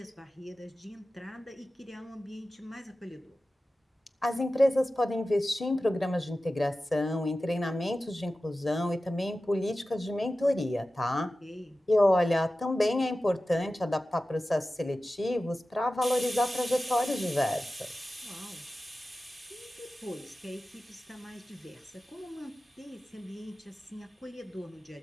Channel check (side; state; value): both; normal; correlation 0.95